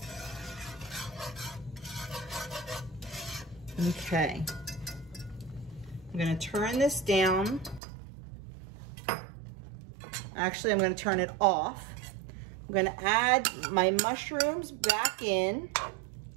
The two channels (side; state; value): left; drops out; at 7.8 s